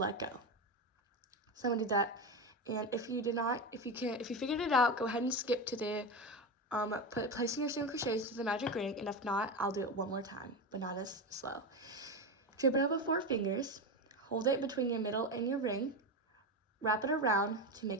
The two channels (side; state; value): both; normal; correlation 0.17